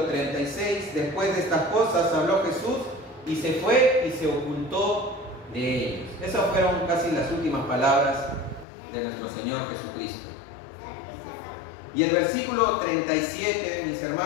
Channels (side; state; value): right; drops out; at 8.7 s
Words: 36, después de estas cosas habló Jesús y se fue y se ocultó de ellos. Esas fueron casi las últimas palabras de nuestro Señor Jesucristo. Y el versículo 37, mis